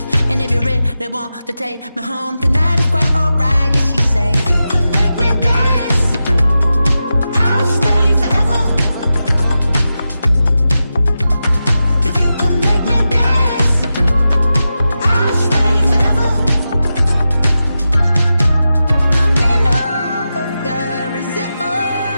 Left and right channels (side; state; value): both; inverted; correlation -0.91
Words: and if you really want to take me home tonight, it's quite alright. Yeah, she say, you can make me dance, I'll stay forever.